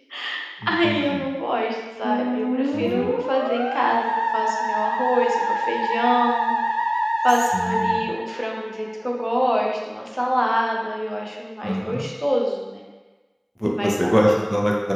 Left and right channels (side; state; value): both; identical; correlation 1.00